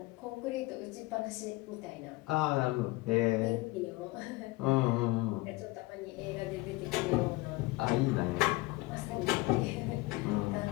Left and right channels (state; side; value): quieter; right; 21.5 dB